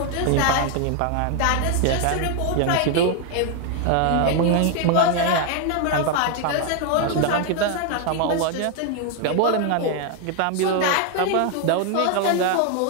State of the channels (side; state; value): both; different; correlation 0.00